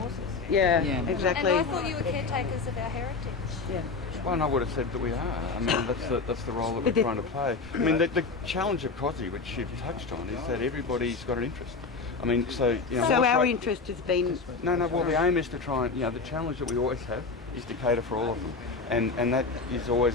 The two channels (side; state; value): right; quieter; 4.3 dB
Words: horses. Yeah, exactly. And I thought you were caretakers of our heritage. Yeah. Well, and I would have said that we are. I mean, that's the role that we're trying to play. I mean, the challenge of COSI, which you've touched on, is that everybody's got an interest. I mean, so our interest has been. No. Well, the aim is to try and the challenge that we always have is to cater for all of them, and that is